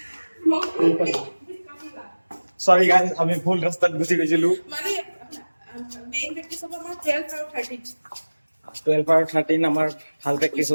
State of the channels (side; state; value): both; inverted; correlation -1.00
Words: সৰি গাইজ, আমি ভুল ৰাস্তাত গুচি গৈছিলো। মানে মেইন প্ৰেক্টিচ হ'ব আমাৰ 12 আৰু 13 আৰু 13 আমাৰ ভাল প্ৰেক্টিচ